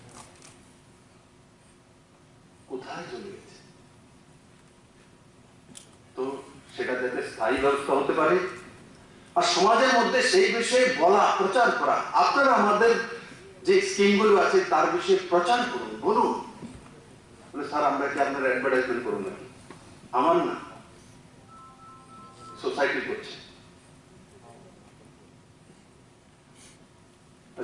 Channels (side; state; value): both; identical; correlation 1.00